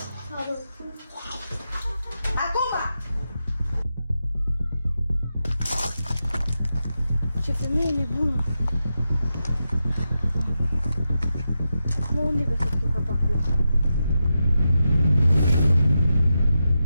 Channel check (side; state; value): both; inverted; correlation -0.88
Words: Acum! Ce femeie nebună!